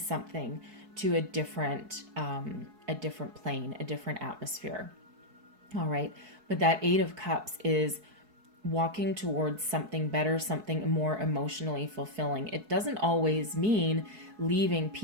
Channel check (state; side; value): late; left; 4.6 ms